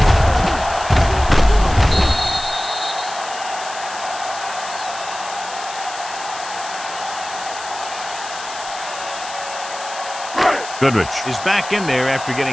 Goodrich is back in there after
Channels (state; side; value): noise; left; hiss, 12 dB below the sound